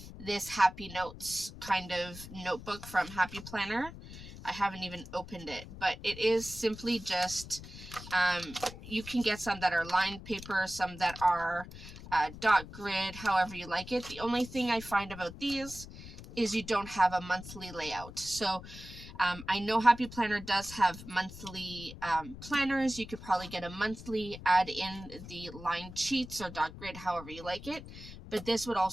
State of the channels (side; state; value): left; noise; rumble, 14 dB below the sound